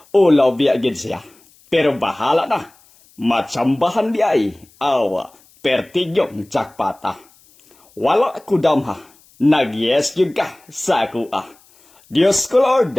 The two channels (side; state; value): left; noise; hiss, 30 dB below the sound